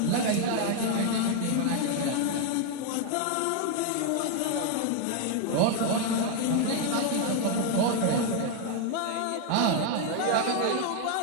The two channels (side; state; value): both; different; correlation 0.01